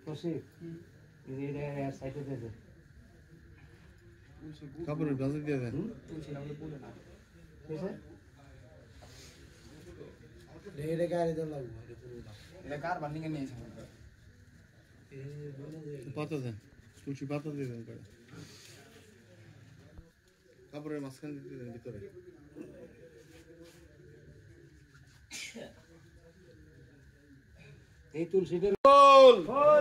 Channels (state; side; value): identical; both; correlation 1.00